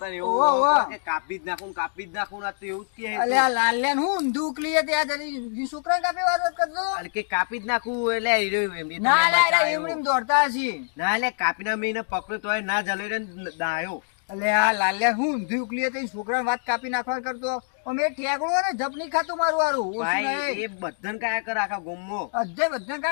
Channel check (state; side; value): silent; right; digital silence